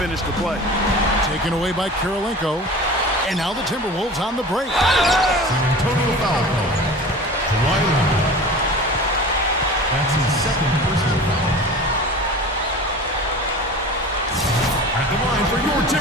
the play. Taken away by Kirilenko. And now the Timberwolves on the break. San Antonio foul call. Kawhi Leonard. That's his second personal foul. At the line for your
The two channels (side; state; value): both; normal; correlation 0.37